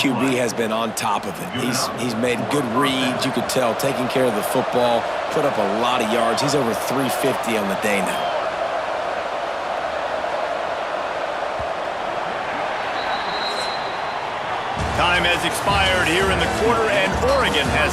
has been on top of it. He's made good reads, you could tell, taking care of the football, put up a lot of yards. He's over 350 on the day now. Time has expired here in the quarter, and Oregon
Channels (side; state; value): both; identical; correlation 1.00